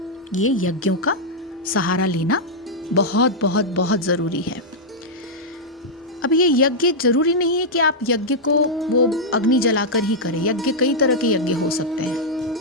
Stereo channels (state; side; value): normal; both; correlation -0.05